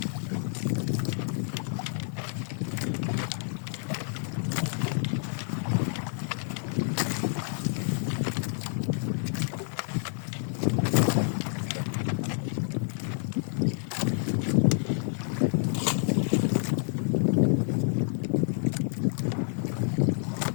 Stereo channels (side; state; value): right; silent; 59 dB below the other